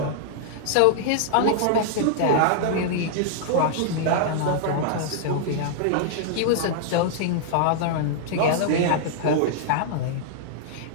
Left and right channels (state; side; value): different; both; correlation -0.01